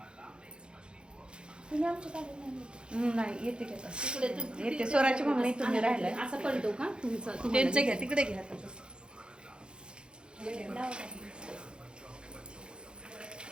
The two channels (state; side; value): late; left; 0.051 ms